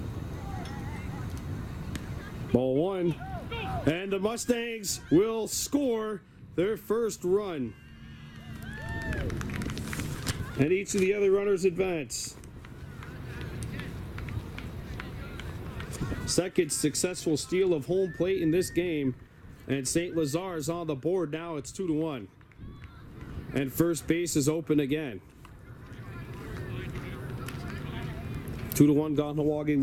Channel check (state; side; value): identical; both; correlation 1.00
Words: Ball 1, and the Mustangs will score their first run. And each of the other runners advance. Second successful steal of home plate in this game, and St-Lazare is on the board now. It's 2-1, and first base is open again. 2-1 Kahnawake